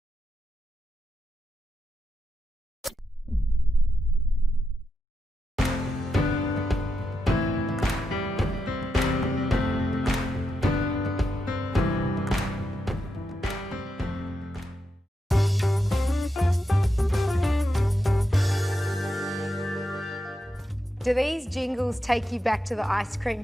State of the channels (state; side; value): normal; both; correlation 0.85